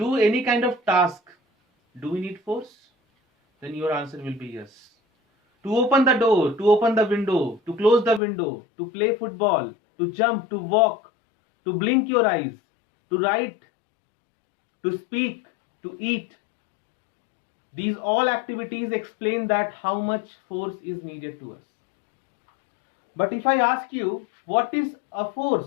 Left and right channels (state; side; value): drops out; right; at 8.2 s